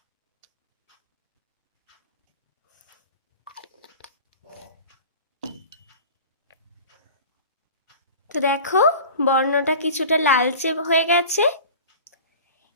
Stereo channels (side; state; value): both; inverted; correlation -0.39